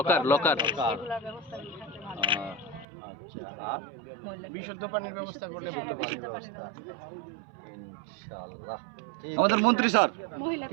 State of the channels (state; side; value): drops out; left; at 2.9 s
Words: লকার এগুলোর ব্যবস্থা থাকলে ভালো। আচ্ছা, আর বিশুদ্ধ পানির ব্যবস্থা করলে হ্যাঁ, বিশুদ্ধ পানির ব্যবস্থা। ইনশাআল্লাহ। আমাদের মন্ত্রী স্যার